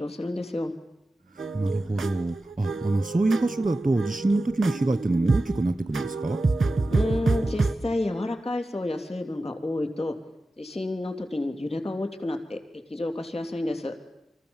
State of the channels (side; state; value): both; normal; correlation 0.93